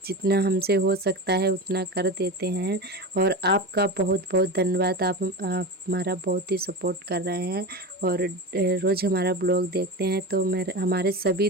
जितना हमसे हो सकता है उतना कर देते हैं। और आपका बहुत बहुत धन्यवाद। आप हमारा बहुत ही सपोर्ट कर रहे हैं और रोज़ हमारा ब्लॉग देखते हैं। तो मेरे हमारे सभी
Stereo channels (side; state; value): both; normal; correlation 0.25